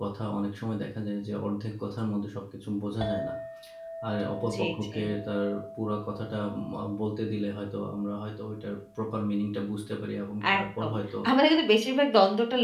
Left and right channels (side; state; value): both; identical; correlation 1.00